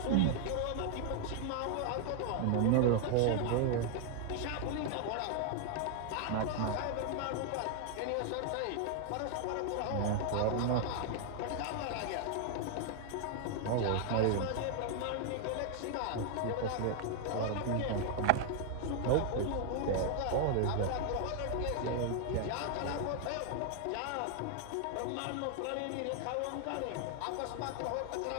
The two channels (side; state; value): both; different; correlation 0.00